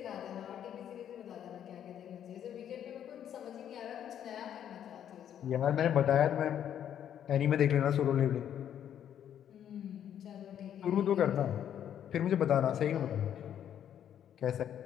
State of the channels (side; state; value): right; quieter; 9.8 dB